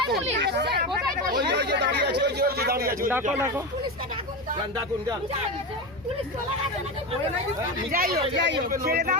পুলিশ? ডাকো যান ডাকুন যান যাই হোক ছেড়ে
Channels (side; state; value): left; noise; rumble, 25 dB below the sound